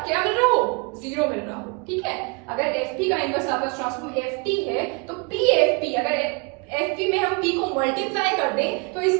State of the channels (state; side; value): quieter; left; 31.7 dB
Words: मिल रहा हो, 0 मिल रहा हो. ठीक है, अगर ft का इनवर्स लाप्लास ट्रांसफॉर्म ft है तो pfp, अगर fp में हम p को मल्टीप्लाई कर दें तो